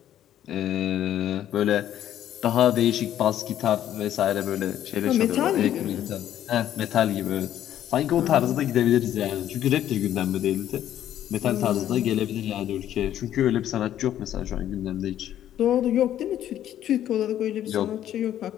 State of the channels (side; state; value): right; quieter; 11.5 dB